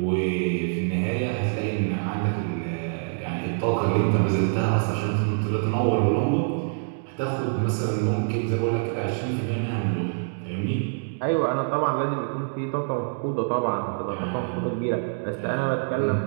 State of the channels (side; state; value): left; silent; digital silence